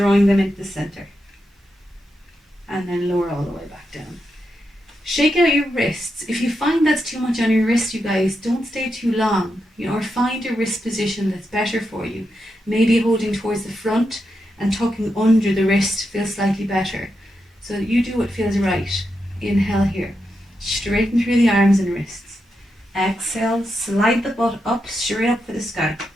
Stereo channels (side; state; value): both; normal; correlation 0.85